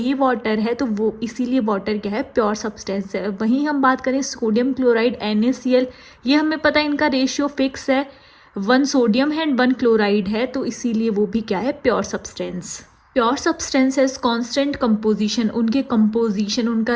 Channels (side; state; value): both; identical; correlation 1.00